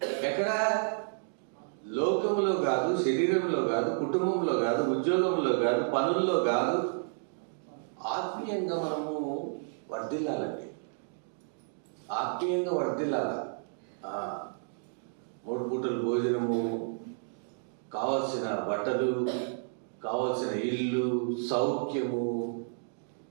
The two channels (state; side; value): silent; left; digital silence